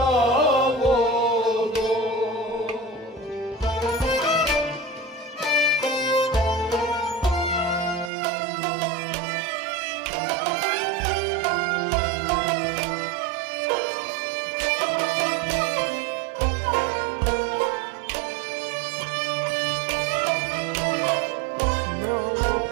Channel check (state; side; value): drops out; left; at 8.1 s